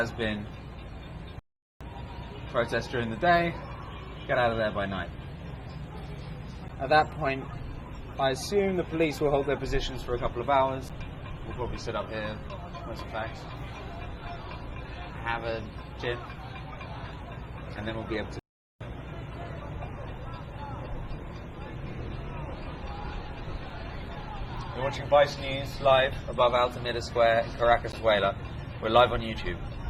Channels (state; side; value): identical; both; correlation 1.00